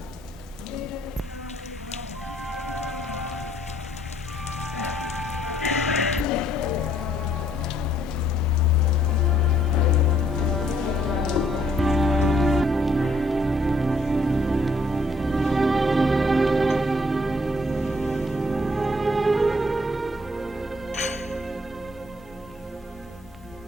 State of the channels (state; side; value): normal; both; correlation 0.67